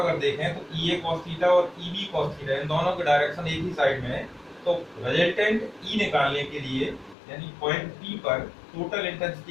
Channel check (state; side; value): drops out; right; at 7.2 s